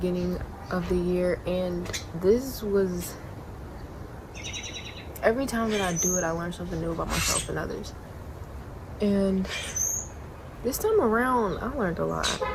of the year, and this was, every time that I do it, I learn something new about myself and others. And this time around, I learned a lot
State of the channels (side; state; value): both; identical; correlation 1.00